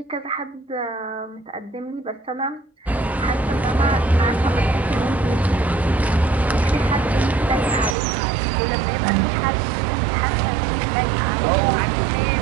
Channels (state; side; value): drops out; left; at 8.0 s